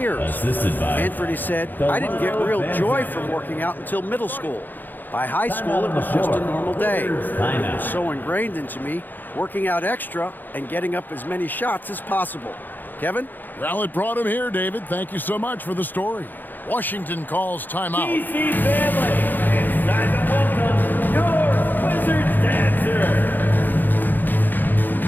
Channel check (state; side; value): late; right; 0.088 ms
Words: Anthony said, "I didn't get real joy from working out until middle school. By high school, it was just a normal day. It was so ingrained into me working out extra and getting up as many shots as possible. Kevin? Well, it brought him here, David. Thank you so much for the story. Washington calls timeout. DC family, it's time to welcome your Wizards dancer.